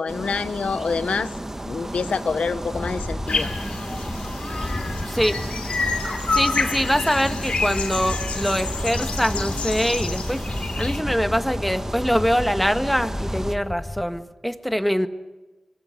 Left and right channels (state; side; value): normal; both; correlation 0.92